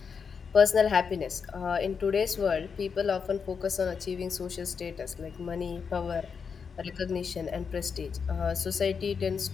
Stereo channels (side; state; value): right; quieter; 6.0 dB